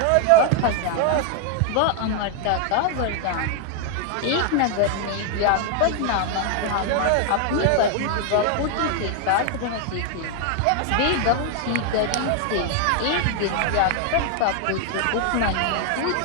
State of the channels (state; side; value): different; both; correlation 0.00